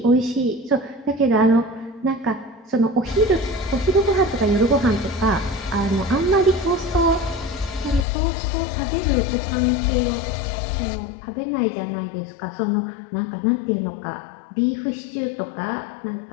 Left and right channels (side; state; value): right; drops out; at 8.1 s